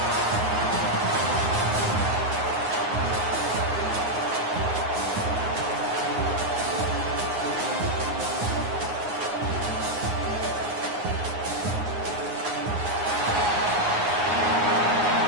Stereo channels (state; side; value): late; left; 9.6 ms